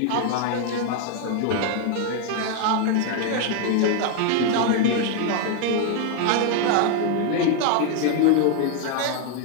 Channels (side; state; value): both; different; correlation 0.01